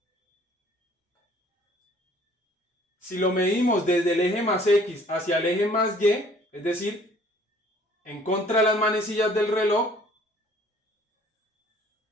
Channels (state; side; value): normal; both; correlation 0.56